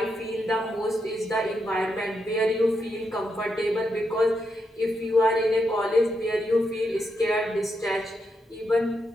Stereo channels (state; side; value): normal; both; correlation 0.83